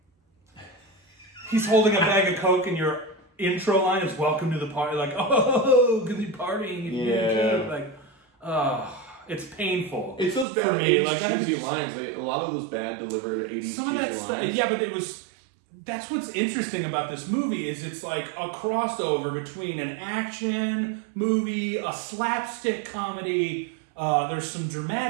he's holding a bag of Coke, and your intro line is "Welcome to the party," like, oh, because you're partying, it's painful. It's those bad 80s cheesy lines. A lot of those bad delivered 80s. Some of that stuff, yeah, but it was. That's what's interesting about this movie is it's like a crossover between an action movie, a slapstick comedy. There's some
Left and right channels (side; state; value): left; drops out; at 10.5 s